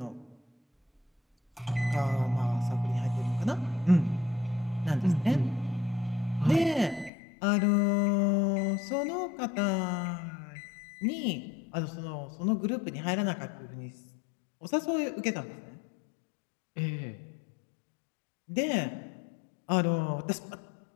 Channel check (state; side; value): drops out; right; at 7.1 s